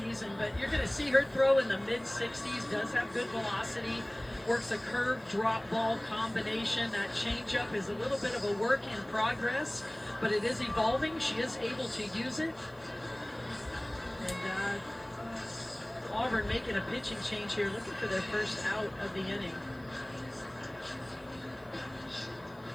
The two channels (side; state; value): right; noise; hiss, 29 dB below the sound